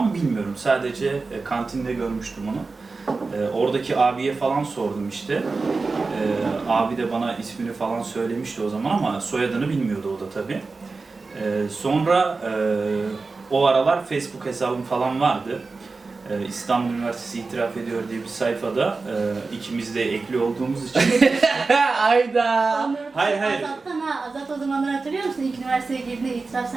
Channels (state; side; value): quieter; left; 4.0 dB